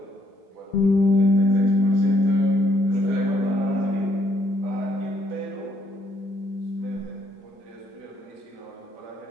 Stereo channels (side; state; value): both; normal; correlation 0.70